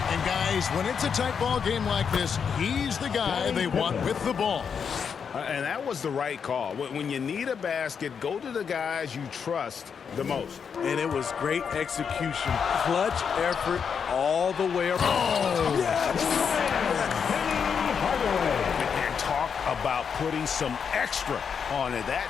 And guys, when it's a tight ball game like this, he's the guy they want with the ball. And that was the right call. When you need a basket, go to the guys you trust the most. And it was great execution. Clutch effort all the way around. Oh, yes! And talk about putting some extra on it.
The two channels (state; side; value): quieter; right; 6.7 dB